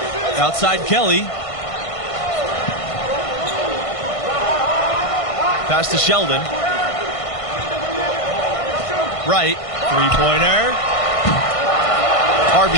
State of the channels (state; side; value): late; right; 1.5 ms